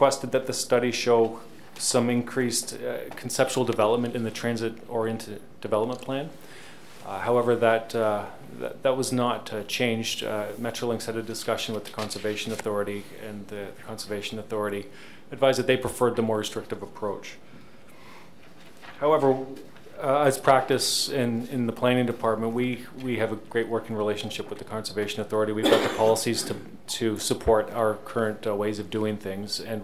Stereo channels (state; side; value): identical; both; correlation 1.00